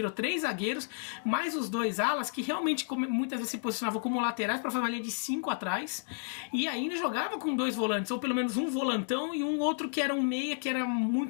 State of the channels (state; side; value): silent; right; digital silence